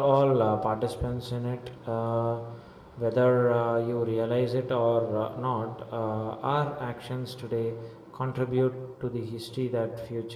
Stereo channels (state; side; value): identical; both; correlation 1.00